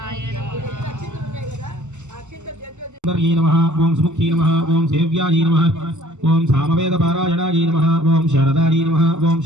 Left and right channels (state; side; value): late; left; 0.84 ms